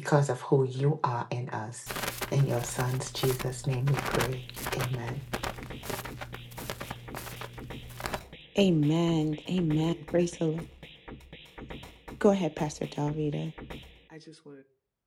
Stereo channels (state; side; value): identical; both; correlation 1.00